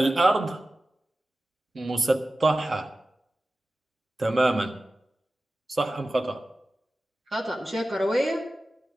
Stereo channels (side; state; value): both; normal; correlation 0.95